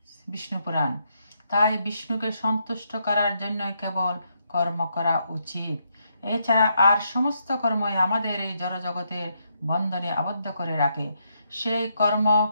বিষ্ণু পুরাণ। তাই বিষ্ণুকে সন্তুষ্ট করার জন্য কেবল কর্ম করা উচিত। এছাড়া আর সমস্ত কর্মই আমাদের এই জড়জগতের বন্ধনে আবদ্ধ করে রাখে। সেই কর্ম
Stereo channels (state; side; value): inverted; both; correlation -0.78